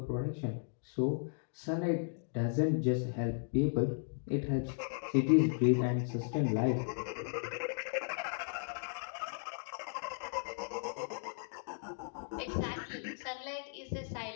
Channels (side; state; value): right; silent; digital silence